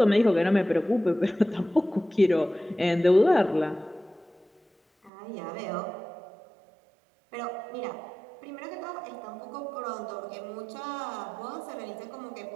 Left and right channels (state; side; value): drops out; left; at 5.1 s